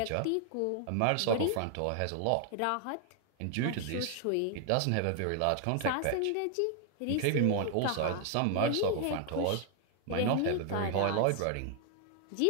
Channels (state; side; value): different; both; correlation 0.00